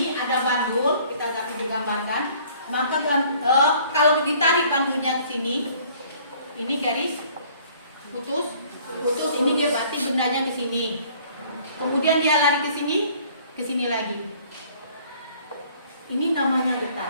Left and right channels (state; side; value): inverted; both; correlation -0.56